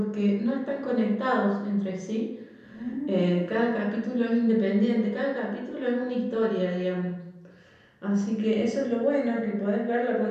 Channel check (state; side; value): identical; both; correlation 1.00